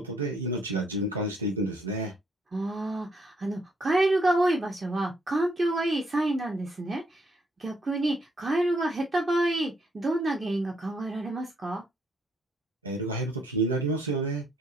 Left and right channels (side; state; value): both; normal; correlation 0.72